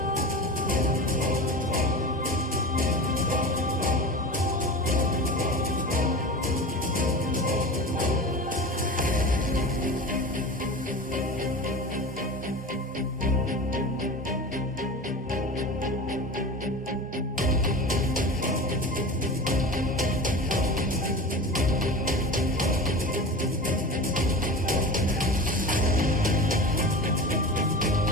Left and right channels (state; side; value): normal; both; correlation 0.31